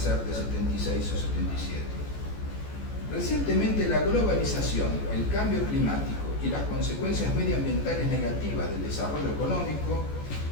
de 76 o 77. Recientemente la globalización, el cambio climático y las consecuencias medioambientales negativas del desarrollo económico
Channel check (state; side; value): late; right; 14 ms